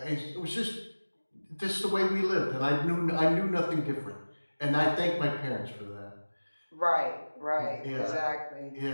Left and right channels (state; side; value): inverted; both; correlation -1.00